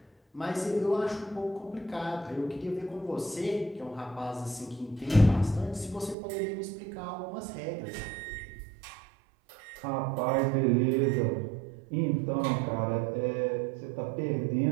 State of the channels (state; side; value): drops out; left; at 6.2 s